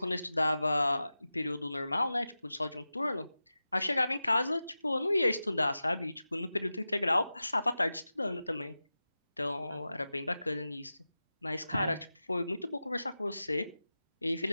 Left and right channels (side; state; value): both; inverted; correlation -0.94